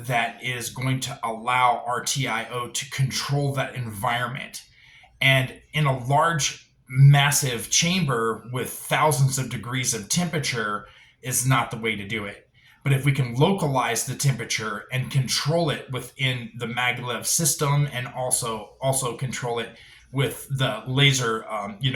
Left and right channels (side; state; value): both; identical; correlation 1.00